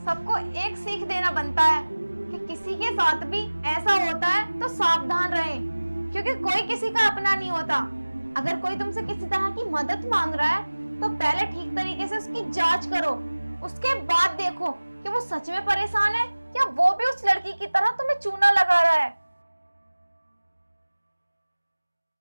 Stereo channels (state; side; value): inverted; both; correlation -1.00